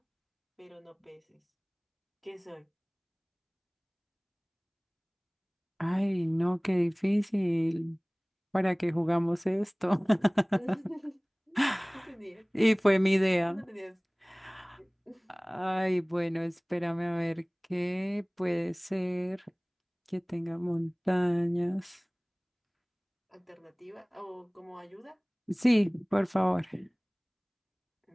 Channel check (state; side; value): identical; both; correlation 1.00